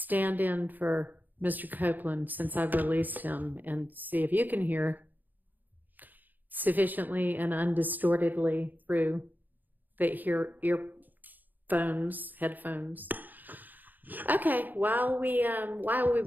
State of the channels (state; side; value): late; left; 0.086 ms